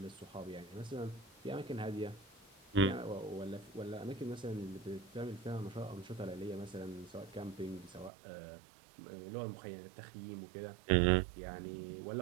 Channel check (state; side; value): drops out; left; at 8.1 s